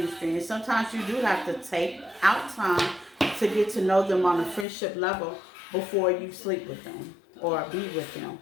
And sometimes you do have to take out time to get to know them on a friendship level before you sleep with them or be with them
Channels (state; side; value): drops out; right; at 4.7 s